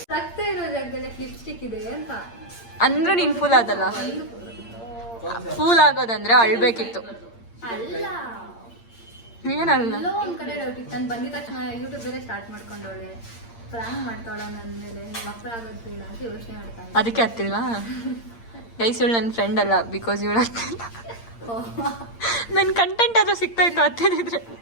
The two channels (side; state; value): right; late; 8.7 ms